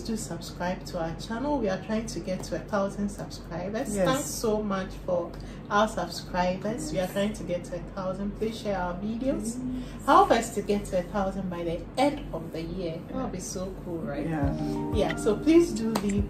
subscribe to our channel. We are trying to get to 1,000 subscribers. Thanks so much for our subscribers. We are trying to get to 1,000. Please share our videos. Help us to get to 1,000 by the end of the year. That would be so cool, right? Yeah. So please do leave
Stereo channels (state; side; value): identical; both; correlation 1.00